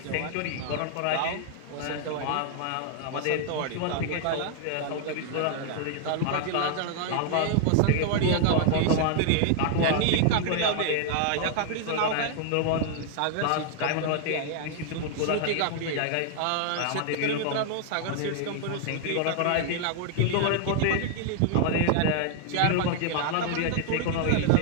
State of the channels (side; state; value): both; different; correlation 0.00